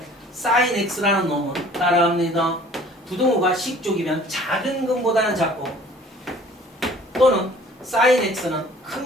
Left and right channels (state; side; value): normal; both; correlation 0.52